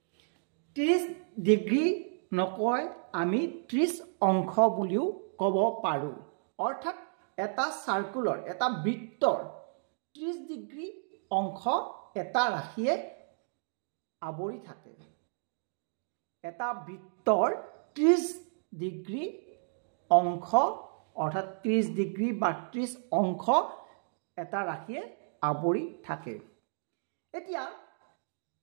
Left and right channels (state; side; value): silent; left; digital silence